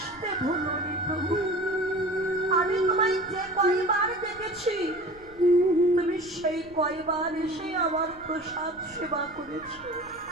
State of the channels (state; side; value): noise; left; rumble, 23 dB below the sound